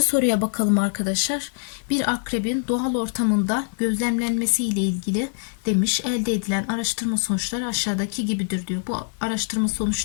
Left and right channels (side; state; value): right; silent; digital silence